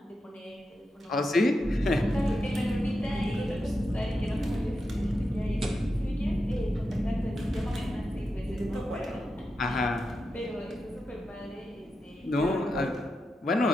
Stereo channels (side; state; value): both; normal; correlation 0.88